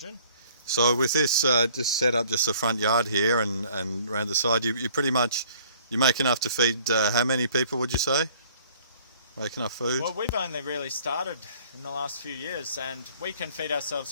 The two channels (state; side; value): inverted; both; correlation -0.57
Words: So with this just set up just the front yard here and around the side, you pretty much, you make enough to feed how many people, would you say? Make enough food? Well, we've only really started in the last few years, and we can feed ourselves